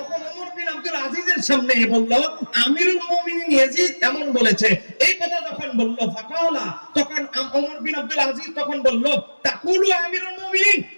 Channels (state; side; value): inverted; both; correlation -1.00